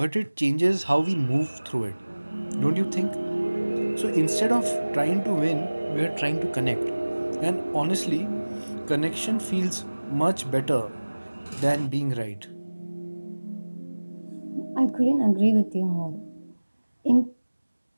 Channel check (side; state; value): both; inverted; correlation -1.00